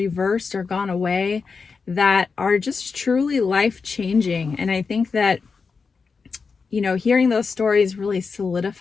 or gone away, that are just truly life-changing. And I think that hearing those stories really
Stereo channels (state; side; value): quieter; right; 5.0 dB